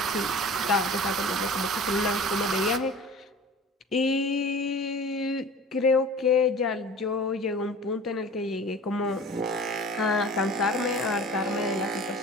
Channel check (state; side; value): normal; both; correlation 0.41